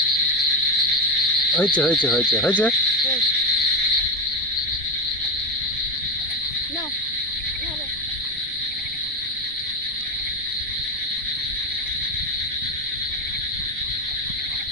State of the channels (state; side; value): noise; right; rumble, 18 dB below the sound